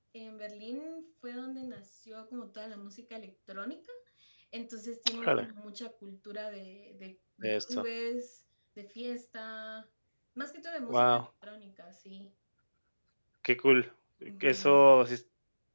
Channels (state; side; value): inverted; both; correlation -1.00